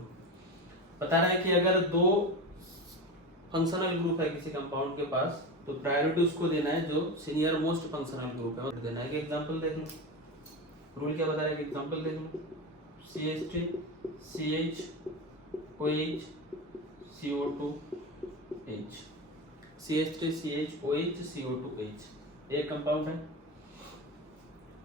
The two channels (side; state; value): both; normal; correlation 0.23